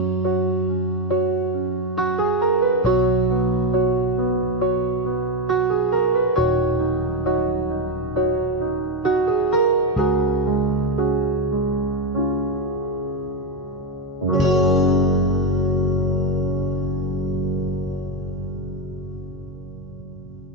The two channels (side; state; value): both; normal; correlation 0.10